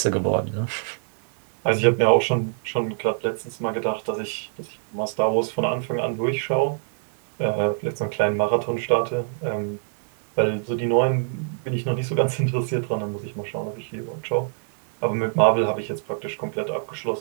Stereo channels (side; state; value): left; silent; digital silence